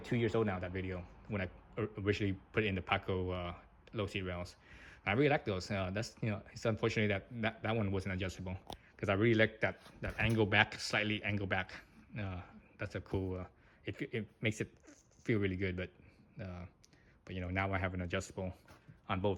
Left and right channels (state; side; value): identical; both; correlation 1.00